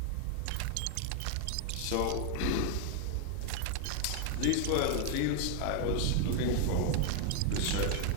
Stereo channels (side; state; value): both; different; correlation 0.00